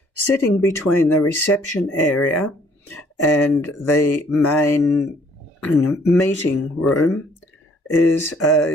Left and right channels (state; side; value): normal; both; correlation 0.61